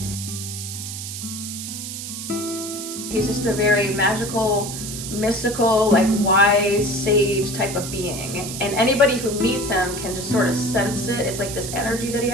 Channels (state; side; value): noise; right; hiss, 8 dB below the sound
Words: He's just a very magical, mystical, like wise sage type of being. And anybody who meets him can just sort of sense it. It's like this energy that he